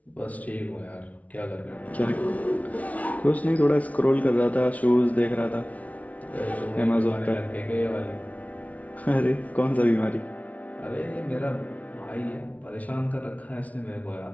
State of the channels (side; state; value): right; late; 0.069 ms